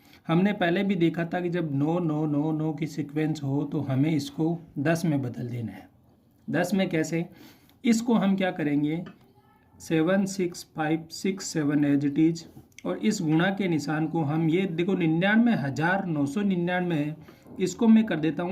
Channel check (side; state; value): both; identical; correlation 1.00